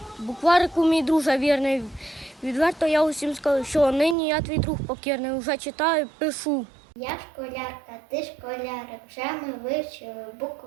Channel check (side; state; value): left; drops out; at 4.2 s